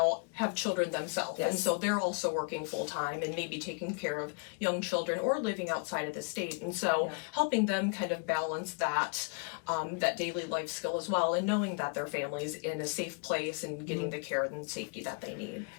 have children themselves. Yes. And so they're also working full time and maybe taking care of young children or living outside of the state. And so helping them kind of balance that, that daily life skill as well, and knowing that their family's in a safe place and getting the care and safety that they need.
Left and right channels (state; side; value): quieter; right; 36.6 dB